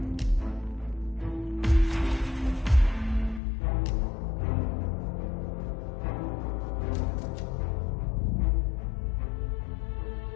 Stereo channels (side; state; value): right; drops out; at 3.4 s